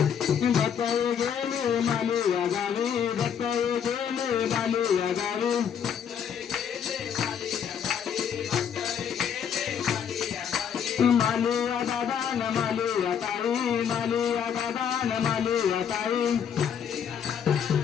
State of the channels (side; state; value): right; quieter; 8.0 dB